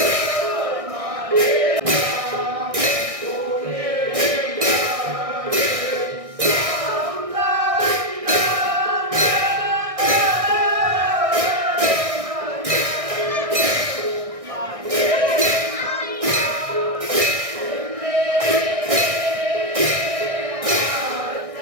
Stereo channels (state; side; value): late; left; 1.6 ms